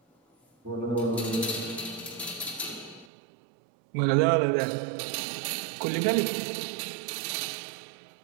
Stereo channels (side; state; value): left; drops out; at 3.1 s